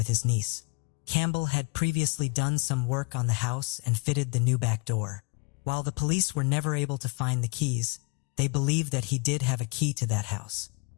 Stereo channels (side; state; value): right; quieter; 33.1 dB